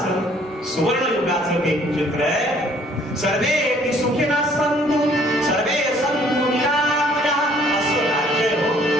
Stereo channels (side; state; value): both; normal; correlation 0.60